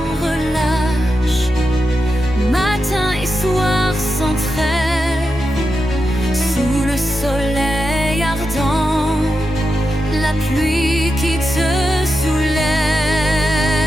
relâche, matin et soir sans trêve, sous le soleil ardent, la pluie qui te soulève.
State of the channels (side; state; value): both; normal; correlation 0.88